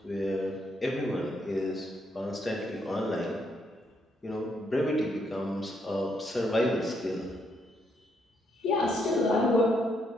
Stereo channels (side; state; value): both; normal; correlation 0.75